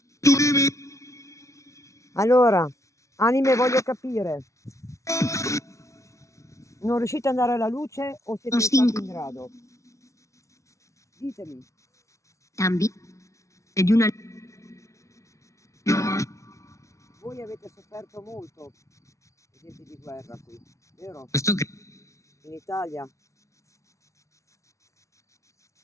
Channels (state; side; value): late; right; 0.14 ms